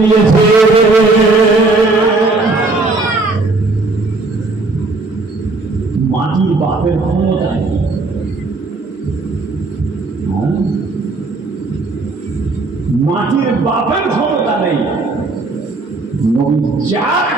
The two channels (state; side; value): quieter; left; 3.4 dB